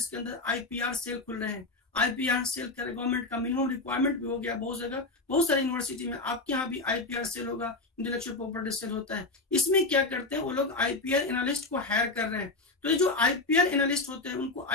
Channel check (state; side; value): quieter; right; 3.3 dB